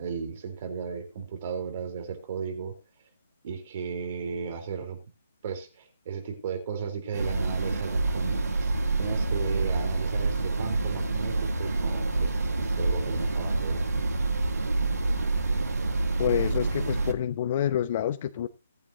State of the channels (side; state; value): both; inverted; correlation -0.79